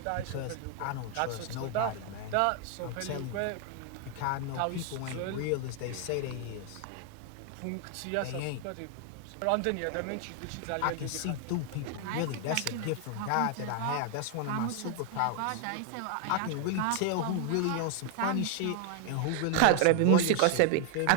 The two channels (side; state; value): both; different; correlation 0.00